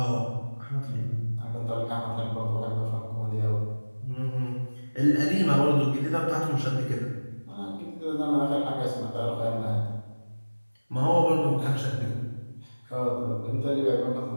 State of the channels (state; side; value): inverted; both; correlation -1.00